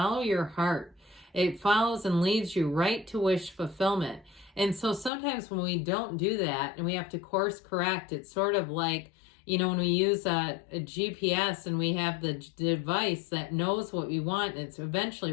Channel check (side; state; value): right; drops out; at 5.1 s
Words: your heart. It follows and leads you right to wish fulfillment. And so sometimes when we don't do that and we have to course correct, it's sort of like, you know, when we use a GPS and we have the device that knows what we want, it's